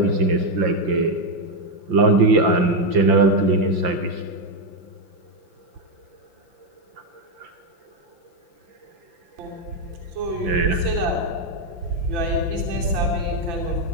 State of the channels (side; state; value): left; late; 5.8 ms